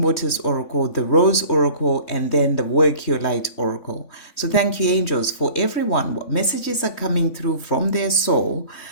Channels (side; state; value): right; late; 3.5 ms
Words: Waters Oracle, the Rose Oracle, and then the Work Your Light Oracle. So thank you, angels, for everyone. What messages are coming through from their soul?